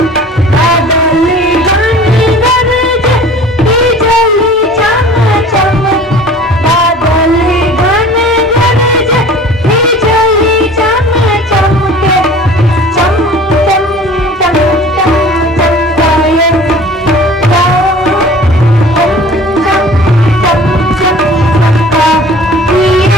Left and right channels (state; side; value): normal; both; correlation 0.45